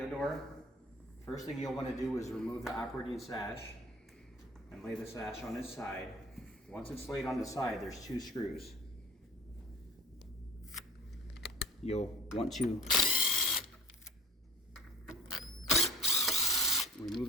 door. First thing you'll want to do is remove the operating sash and lay the sash on its side. Once it's laid on the side, there's 2 screws. You'll want to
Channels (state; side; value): normal; both; correlation 0.39